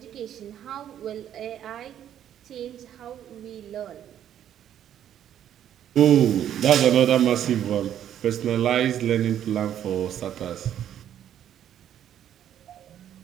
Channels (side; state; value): left; quieter; 10.5 dB